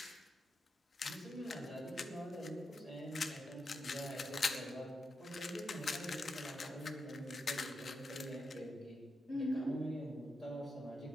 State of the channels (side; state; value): both; normal; correlation 0.86